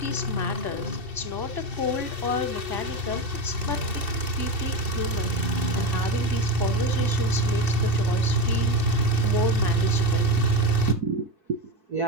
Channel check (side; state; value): left; late; 2.7 ms